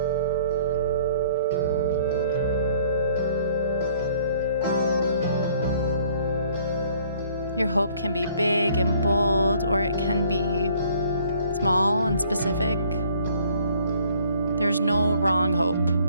Your hope can be big and bold, or it can be small and specific. There's no wrong hope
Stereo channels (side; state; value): both; inverted; correlation -0.59